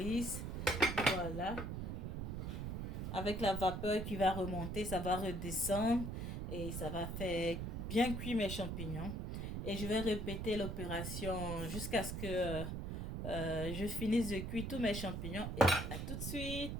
Voilà. Avec la vapeur qui va remonter, ça va redescendre et ça va faire bien cuire mes champignons. Et je vais répéter l'opération jusqu'à ce que je finisse de cuire tous mes champignons. Et à tout de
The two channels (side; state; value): right; noise; rumble, 4 dB below the sound